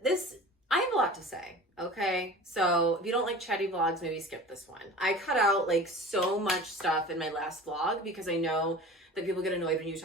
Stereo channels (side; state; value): both; normal; correlation 0.38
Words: this. I have a lot to say, okay? So if you don't like chatty vlogs, maybe skip this one. I cut out like so much stuff in my last vlog because I know that people get annoyed when you